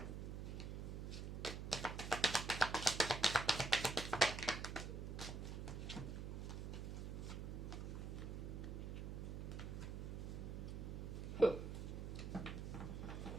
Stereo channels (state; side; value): noise; right; hum, 5 dB below the sound